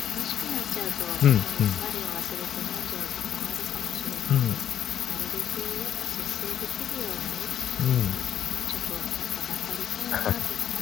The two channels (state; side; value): quieter; right; 9.9 dB